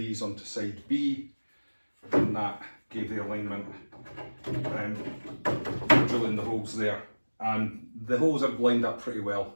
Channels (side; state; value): both; inverted; correlation -1.00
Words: onto side B, and that gave the alignment, drilling the holes there. And the holes are lined up pretty well.